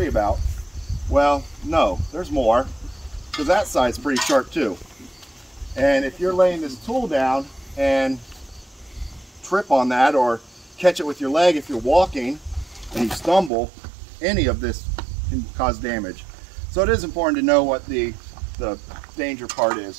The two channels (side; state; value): left; drops out; at 13.5 s